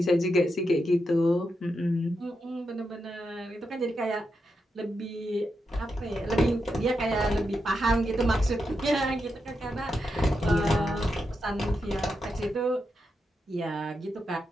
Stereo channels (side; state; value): both; normal; correlation 0.85